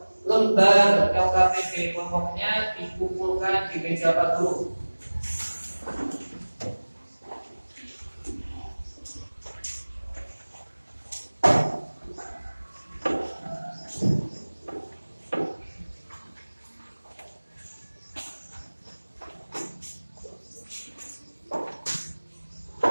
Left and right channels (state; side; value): inverted; both; correlation -1.00